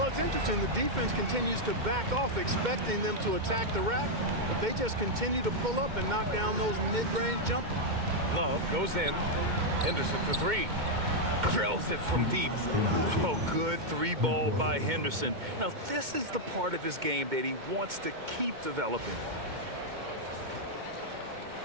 it's interesting. The defense continues to back off, expecting them to attack the rack, but they just continue to pull up and knock down those mid-range jumpers. Love goes in. Henderson for 3. Drills it from deep. Oh, good 3-ball by Henderson. Now, this is the part of his game that he wants to keep developing.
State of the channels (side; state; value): left; late; 2.2 ms